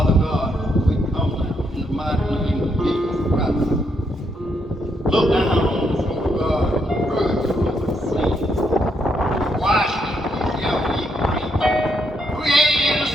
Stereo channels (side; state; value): both; normal; correlation 0.76